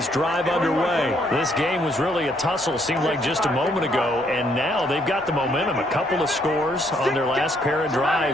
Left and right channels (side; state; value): both; normal; correlation 0.70